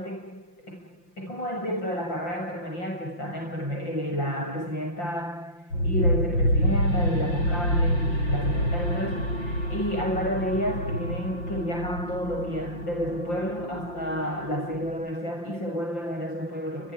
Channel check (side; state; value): right; late; 5.8 ms